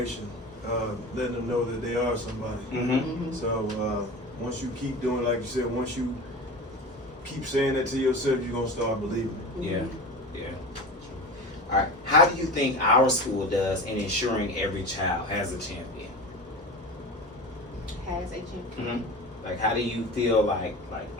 letting them know that they are somebody. Mm-hmm. So once you keep doing, like you said, once you keep saying that to yourself, you're going to start believing it. Yeah. All right. How do you think our school does in ensuring every child has a champion? Has a champion. Mm-hmm. Like, how do you feel like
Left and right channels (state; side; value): normal; both; correlation 0.31